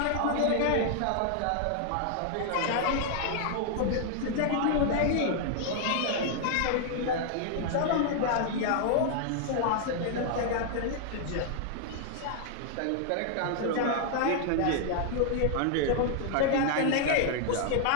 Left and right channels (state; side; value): different; both; correlation 0.00